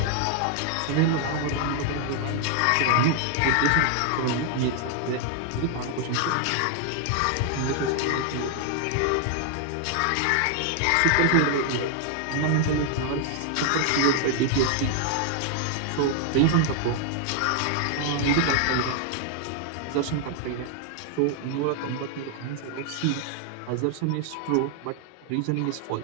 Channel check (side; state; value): both; different; correlation 0.00